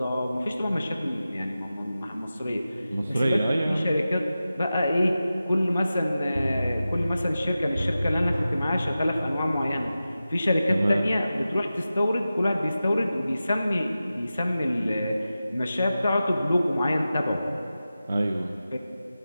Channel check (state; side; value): inverted; both; correlation -0.94